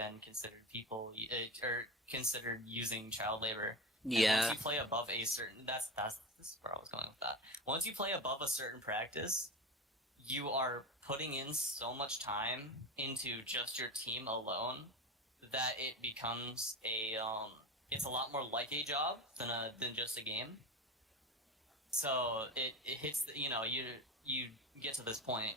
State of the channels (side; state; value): both; normal; correlation 0.24